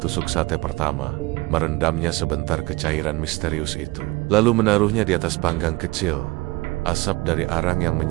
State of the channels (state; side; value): quieter; left; 22.6 dB